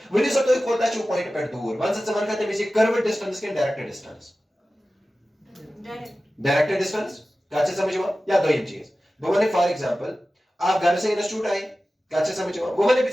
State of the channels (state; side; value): normal; both; correlation 0.95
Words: वनी सो तुई कोता छु पॉइंट पे दूर वन से मन कहते हैं कर्व डिस्टेंस के डायरेक्ट डिस्टेंस डायरेक्ट डिस्टेंस काचे समझ में या दो चीज वो मैंने फॉर एग्जांपल आप घर से इंस्टीट्यूट आए काचे समझ में वो मैंने भी